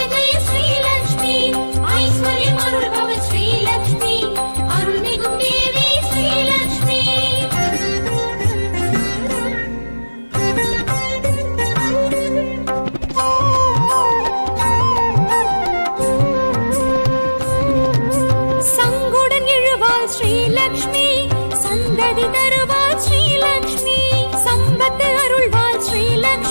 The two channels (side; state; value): both; inverted; correlation -1.00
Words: जय श्रीलक्ष्मी ऐश्वर्यम् अरुள் भव श्रीलक्ष्मी अरुள்मिகும் देवी श्रीलक्ष्मी சங்குடன் எழுவாள் श्रीलक्ष्मी சந்ததி தருவாள் श्रीलक्ष्मी சம்பத்து அருள்வாள்